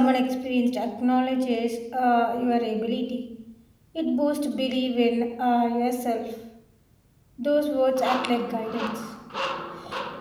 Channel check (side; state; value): both; identical; correlation 1.00